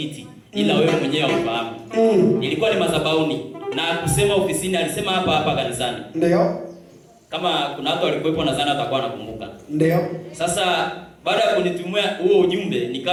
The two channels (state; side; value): identical; both; correlation 1.00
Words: ila wewe mwenyewe haufahamu. Ilikuwa ni madhabahuni, na kusema ofisini, alisema hapa kanisani. Ndio. Kama kuna watu walikuwepo nadhani atakuwa anakumbuka. Ndio. Sasa baada ya kunitumia huo ujumbe,